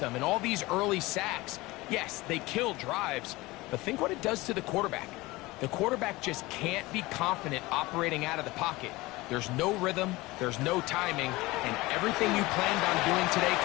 And all these early sacks, yes, they kill drives, but think what it does to the quarterback. The quarterback just can't be confident operating out of the pocket. There's no rhythm, there's no timing, and everything you planned on doing today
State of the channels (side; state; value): right; quieter; 20.8 dB